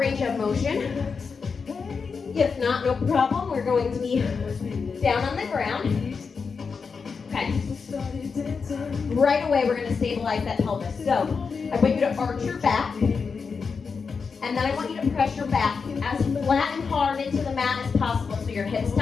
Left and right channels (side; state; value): right; quieter; 5.3 dB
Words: of motion. If not, no problem. We're going to be down on the ground. Okay. Right away, we're going to stabilize that pelvis. So, I want you to arch your back. And then I want you to press your back as flat and hard into the mat as possible. So your hips